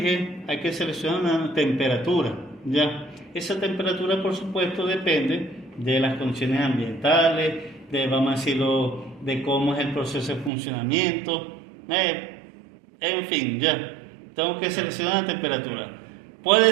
hay que seleccionar una temperatura, ¿ya? Esa temperatura, por supuesto, depende de las condiciones ambientales, vamos a decirlo, de cómo es el proceso de funcionamiento, en fin, ya. Tengo que seleccionar la temperatura.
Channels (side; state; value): left; drops out; at 10.5 s